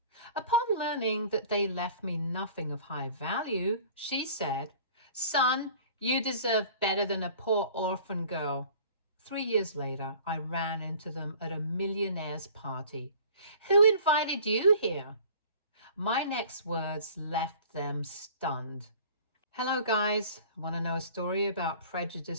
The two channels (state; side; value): inverted; both; correlation -0.47